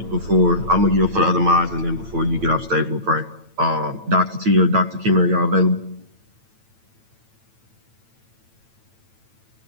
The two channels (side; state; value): left; late; 9.0 ms